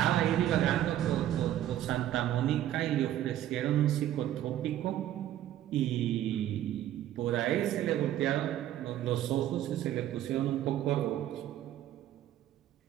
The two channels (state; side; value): quieter; left; 12.4 dB